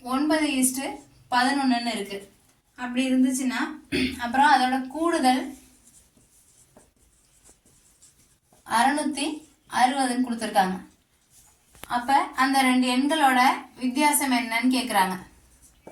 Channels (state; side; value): identical; both; correlation 1.00